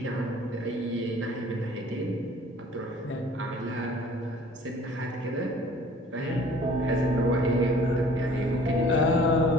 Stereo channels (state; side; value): normal; both; correlation 0.51